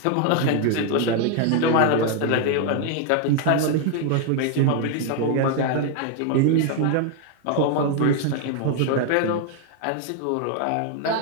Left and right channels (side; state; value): both; different; correlation 0.00